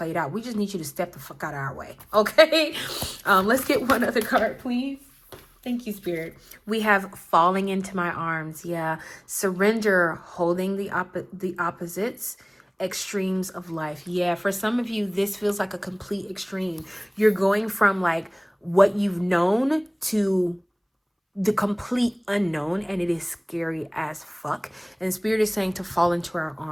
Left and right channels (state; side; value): identical; both; correlation 1.00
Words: out. We just need you to step the fuck out of our way. Okay. Let's get one other card, please. Thank you, Spirit. We have falling into my arms. Yeah. Surrender, holding the opposites, extremes of life. Yeah. For some of you, this feels like a complete extreme. You're going from like what you've known to the complete unknown, and it is scary as fuck. And Spirit is saying to fall into our